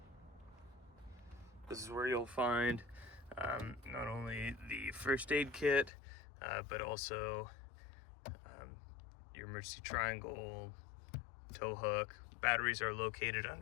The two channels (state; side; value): drops out; right; at 5.9 s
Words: This is where you'll find not only the first aid kit, but also your emergency triangle, tow hook. Batteries are located